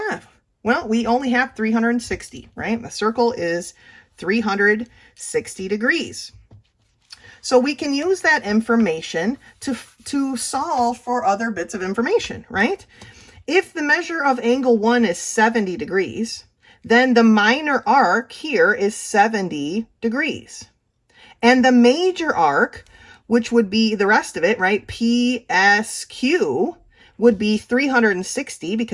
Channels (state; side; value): identical; both; correlation 1.00